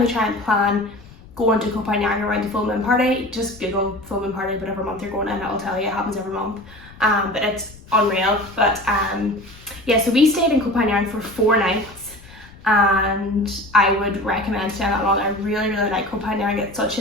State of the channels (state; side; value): noise; left; rumble, 22 dB below the sound